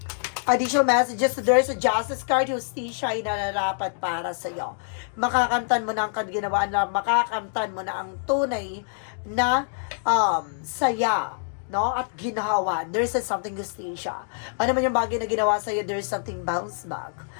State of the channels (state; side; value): silent; right; digital silence